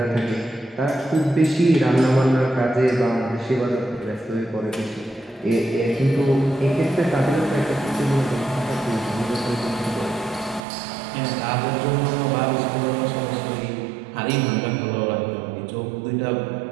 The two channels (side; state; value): left; drops out; at 10.6 s